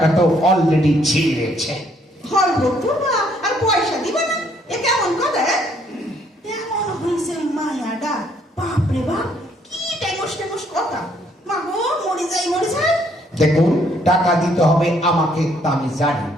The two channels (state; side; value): normal; both; correlation 0.67